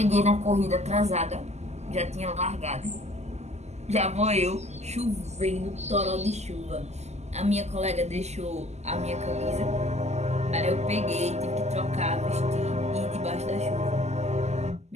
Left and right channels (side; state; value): left; late; 0.33 ms